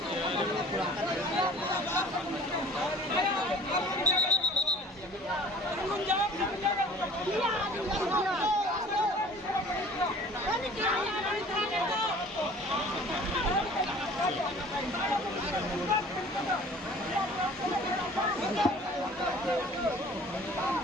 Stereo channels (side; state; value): both; normal; correlation 0.47